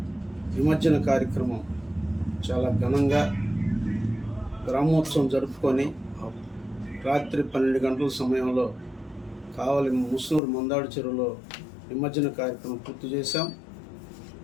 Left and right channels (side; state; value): right; drops out; at 10.4 s